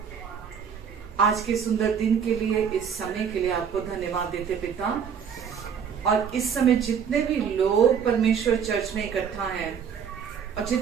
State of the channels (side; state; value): left; quieter; 7.3 dB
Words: आज के सुंदर दिन के लिए, इस समय के लिए आपको धन्यवाद देते पिता। और इस समय जितने भी लोग परमेश्वर चर्च में इकट्ठा हैं और